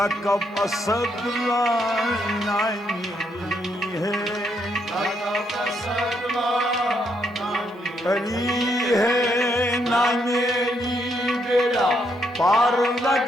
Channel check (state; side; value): normal; both; correlation 0.76